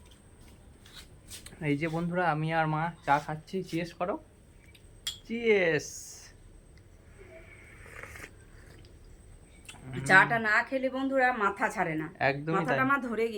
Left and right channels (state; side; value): identical; both; correlation 1.00